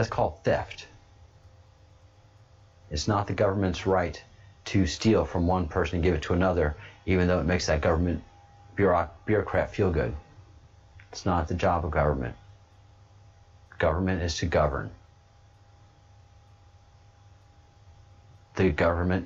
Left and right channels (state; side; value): identical; both; correlation 1.00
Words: called theft. It's not the government's right to steal from one person and give it to another, even though it makes that government bureaucrat feel good. It's not the job of government. Government is to govern. The